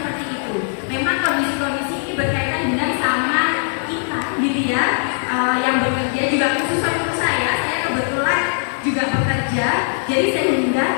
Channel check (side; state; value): right; silent; digital silence